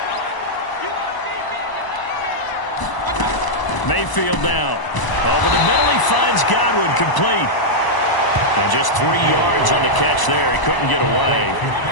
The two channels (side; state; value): right; late; 1.0 ms